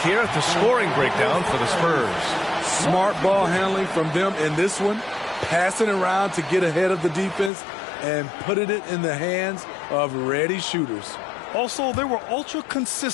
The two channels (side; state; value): right; drops out; at 7.5 s